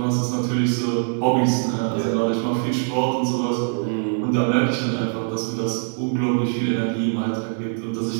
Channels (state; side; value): silent; left; 64 dB below the other